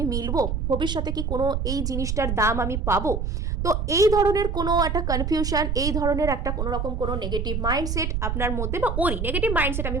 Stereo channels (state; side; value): noise; right; rumble, 1 dB below the sound